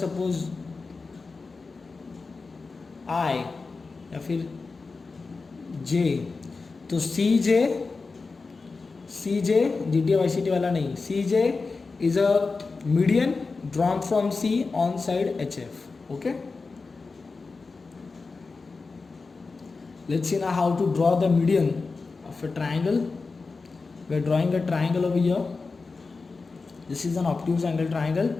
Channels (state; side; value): quieter; right; 4.2 dB